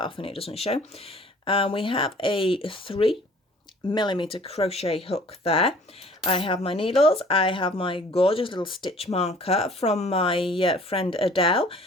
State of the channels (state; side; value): normal; both; correlation 0.52